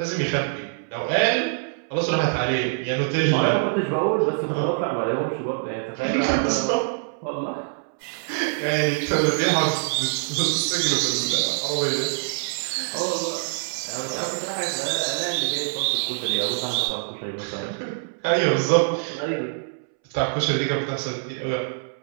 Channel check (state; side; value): silent; left; 62 dB below the other